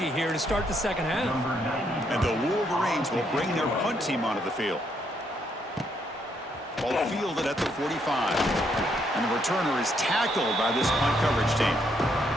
here to start the second half. And the Wolverines will bring their punt team onto the field. Ball fielded at the 45. And the returner is tackled by this punt coverage team.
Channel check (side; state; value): both; normal; correlation 0.74